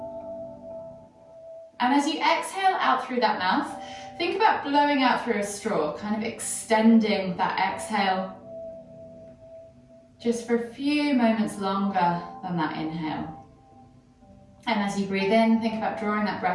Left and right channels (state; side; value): identical; both; correlation 1.00